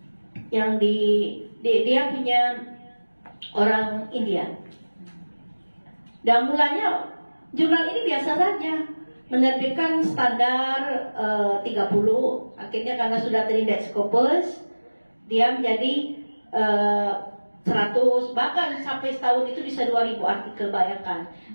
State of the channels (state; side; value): inverted; both; correlation -1.00